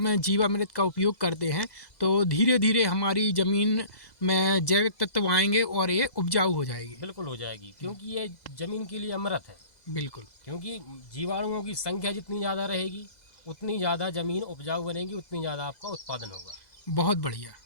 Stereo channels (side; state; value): right; late; 2.0 ms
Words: जीवामृत का उपयोग करते हैं तो धीरे धीरे हमारी ज़मीन में जैविक तत्व आएंगे और ये उपजाऊ हो जाएगी। बिल्कुल हो जाएगी, क्योंकि ये ज़मीन के लिए अमृत है। बिल्कुल। क्योंकि जीवाणुओं की संख्या जितनी ज़्यादा रहेगी उतनी ज़्यादा ज़मीन उपजाऊ बनेगी, उतनी ज़्यादा आपका उत्पादन होगा। बहुत बढ़िया,